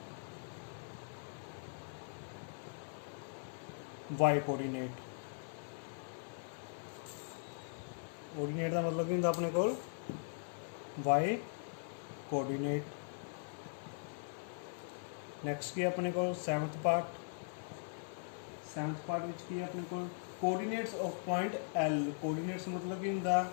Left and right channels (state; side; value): silent; right; 51 dB below the other